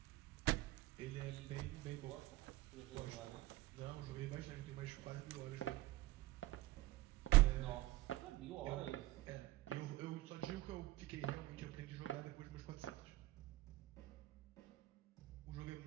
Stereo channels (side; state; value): left; quieter; 17.9 dB